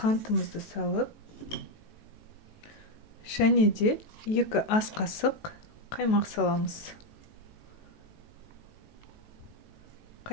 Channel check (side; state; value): right; late; 18 ms